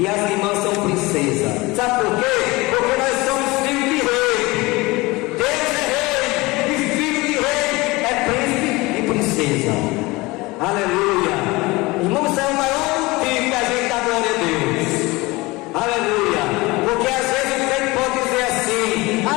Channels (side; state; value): right; quieter; 22.3 dB